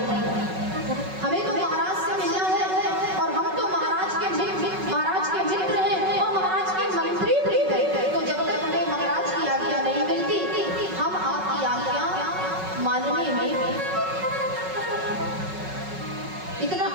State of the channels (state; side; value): late; left; 5.4 ms